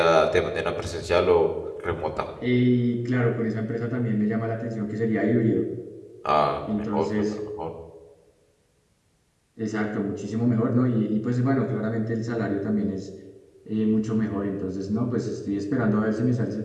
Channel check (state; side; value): identical; both; correlation 1.00